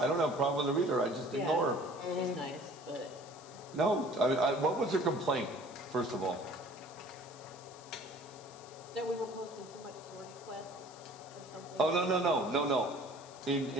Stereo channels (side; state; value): left; noise; hiss, 20 dB below the sound